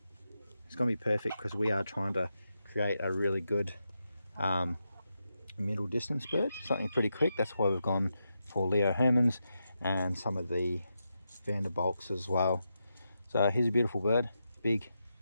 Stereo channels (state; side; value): inverted; both; correlation -0.86